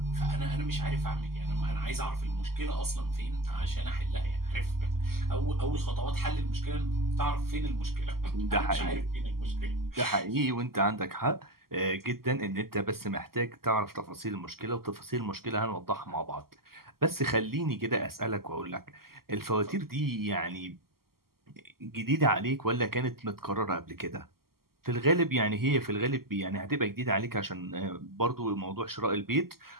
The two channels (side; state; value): left; late; 0.93 ms